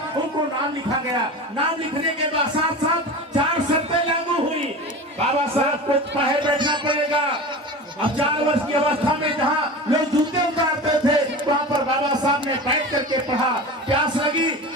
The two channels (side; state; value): both; normal; correlation 0.31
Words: उनको नाम लिखा गया। नाम लिखने के बाद साथ साथ 4 शर्तें लागू हुई। बाबा साहब को बाहर बैठना पड़ेगा। अब 4 वर्ष की अवस्था में जहाँ लोग जूते उतारते थे वहाँ पर बाबा साहब ने बैठ करके पढ़ा। प्यास लगी